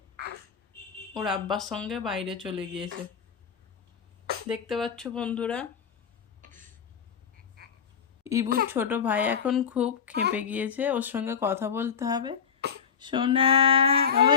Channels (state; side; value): quieter; right; 7.1 dB